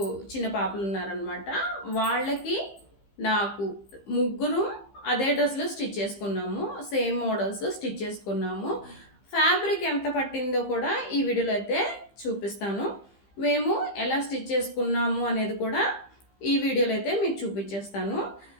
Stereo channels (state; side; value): late; right; 15 ms